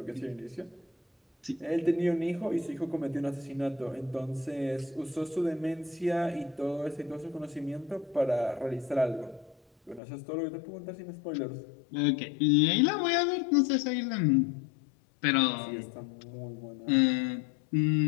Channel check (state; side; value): drops out; right; at 10.0 s